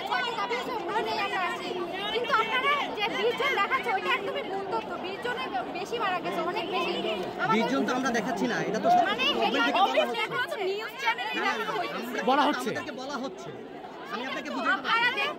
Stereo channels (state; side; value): identical; both; correlation 1.00